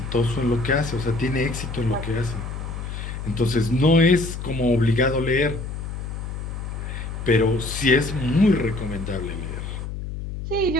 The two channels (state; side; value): noise; left; hum, 7 dB below the sound